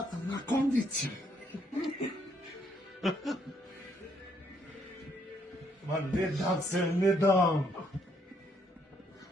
Na kondiciju. Ma ne dam se, ne dam.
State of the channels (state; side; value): normal; both; correlation 0.71